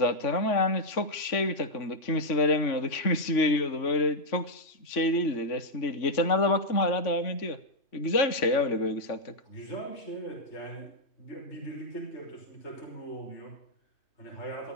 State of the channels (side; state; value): right; late; 3.5 ms